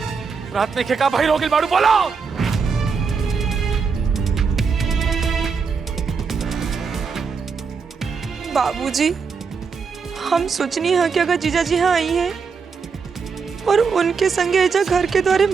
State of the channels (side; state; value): left; quieter; 5.5 dB